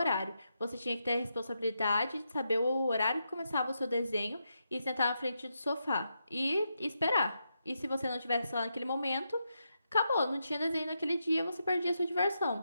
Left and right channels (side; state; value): both; inverted; correlation -0.84